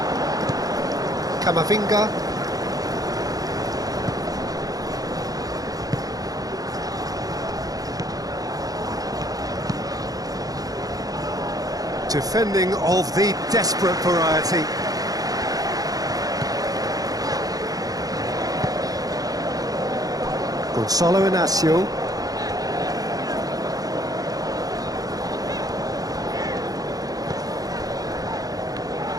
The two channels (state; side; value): late; left; 0.18 ms